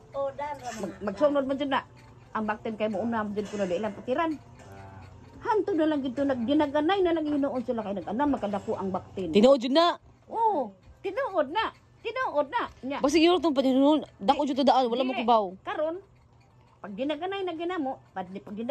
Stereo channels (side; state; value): both; identical; correlation 1.00